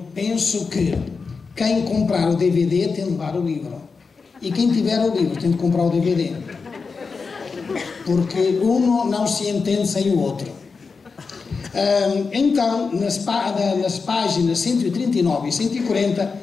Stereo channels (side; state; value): right; quieter; 4.8 dB